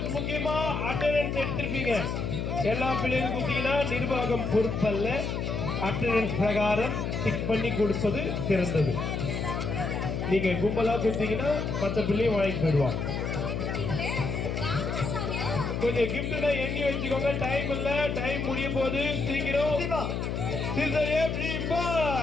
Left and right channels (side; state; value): left; noise; hum, 2 dB below the sound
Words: முக்கியமா அட்டெண்டன்ஸ் எடுத்திருப்பீங்க. எல்லா பிள்ளைகளுக்கும் கொடுத்தீங்கன்னா நிர்வாகம் பொறுப்பல்ல. அட்டெண்டன்ஸ் பிரகாரம் டிக் பண்ணி கொடுப்பது சிறந்தது. நீங்க கும்பலா கொடுத்தீங்கன்னா மற்ற பிள்ளையும் வாங்கி போயிடுவாங்க. கொஞ்சம் கிஃப்ட்னா எண்ணி வச்சுக்கோங்க. டைம் இல்ல, டைம் முடிய போது. சீக்கிரம்